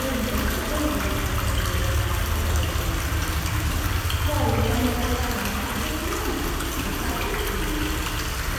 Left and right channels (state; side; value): identical; both; correlation 1.00